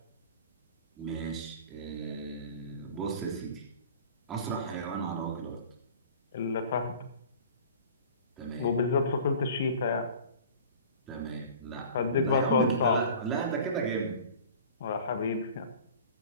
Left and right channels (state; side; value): inverted; both; correlation -0.42